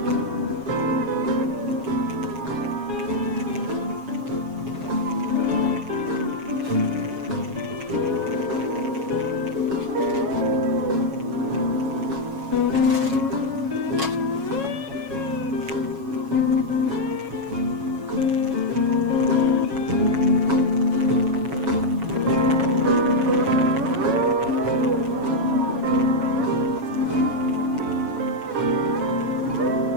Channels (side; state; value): left; late; 7.3 ms